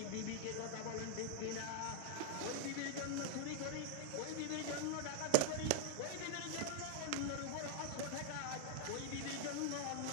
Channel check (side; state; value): both; different; correlation 0.00